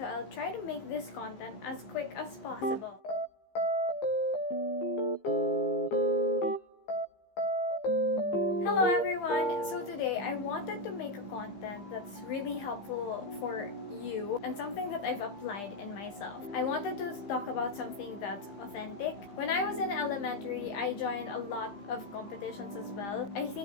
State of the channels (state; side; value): late; right; 15 ms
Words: I'll try to make this content as quick as possible. Hello everyone! So today, I wanted to make a content that's really helpful for you and something that I've applied in myself. I wanted to talk about something that's authentic. When I was in elementary, I joined a lot of competitions as well. I